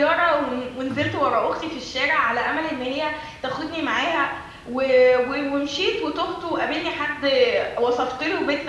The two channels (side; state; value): both; identical; correlation 1.00